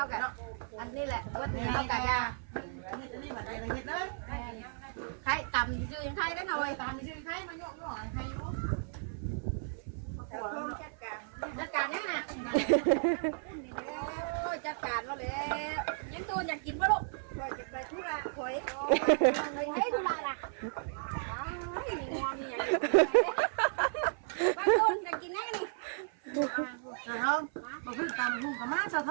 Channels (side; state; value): left; silent; 55 dB below the other